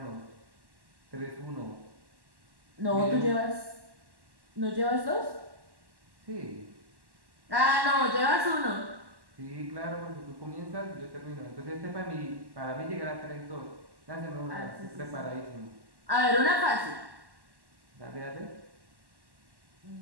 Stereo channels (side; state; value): left; late; 1.1 ms